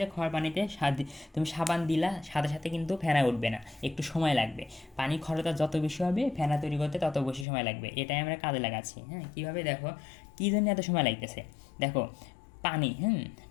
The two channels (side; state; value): right; drops out; at 7.5 s